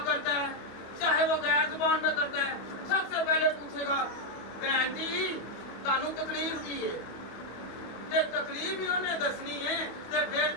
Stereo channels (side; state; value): right; late; 25 ms